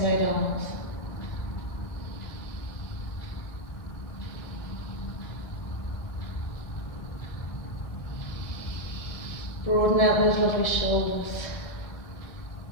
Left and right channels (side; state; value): right; late; 1.7 ms